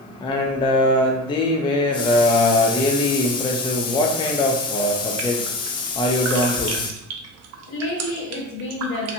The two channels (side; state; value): both; normal; correlation 0.28